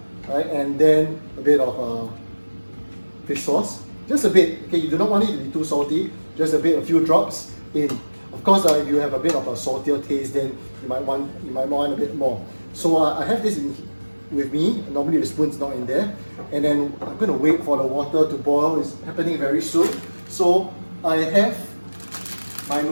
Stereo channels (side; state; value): both; inverted; correlation -1.00